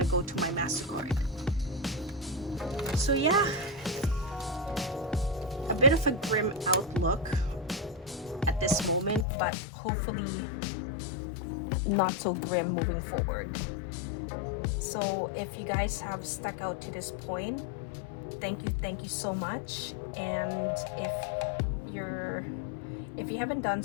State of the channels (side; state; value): right; drops out; at 9.2 s